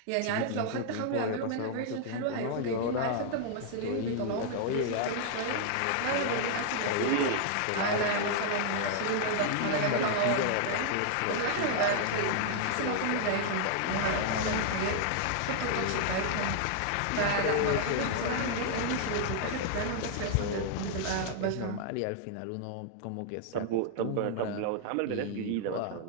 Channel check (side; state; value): both; different; correlation -0.01